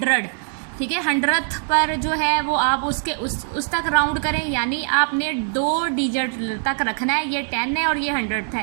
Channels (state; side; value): silent; left; digital silence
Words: ठीक है। 100th पर जो है वो आप उसके उस तक राउंड करें, यानी आपने 2 डिजिट तक रखना है। ये 10 है और ये 100